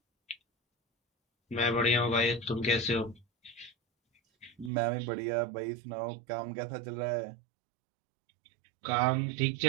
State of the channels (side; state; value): left; drops out; at 4.7 s